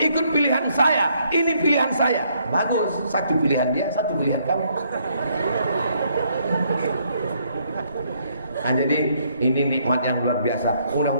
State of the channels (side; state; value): both; inverted; correlation -0.70